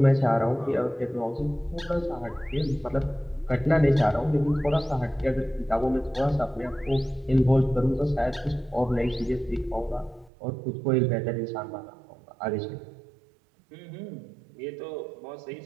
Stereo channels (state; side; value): drops out; left; at 10.3 s